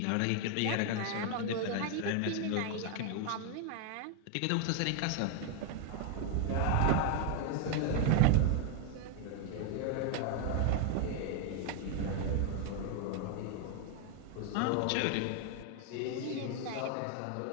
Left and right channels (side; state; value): both; different; correlation 0.00